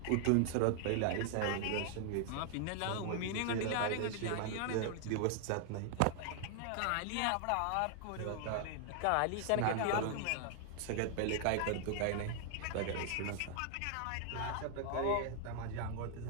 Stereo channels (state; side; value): different; both; correlation 0.00